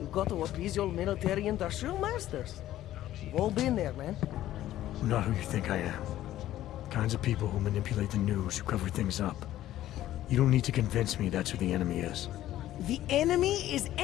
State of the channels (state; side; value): quieter; right; 13.6 dB